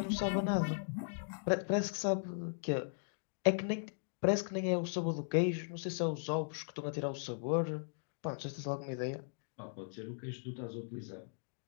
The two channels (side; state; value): right; silent; digital silence